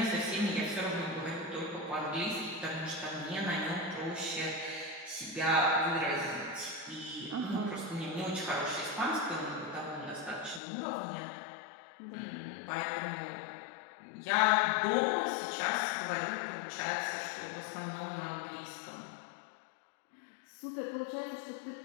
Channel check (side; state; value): right; drops out; at 10.6 s